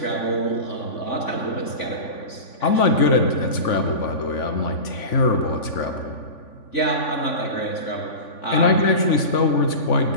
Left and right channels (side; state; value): right; late; 3.5 ms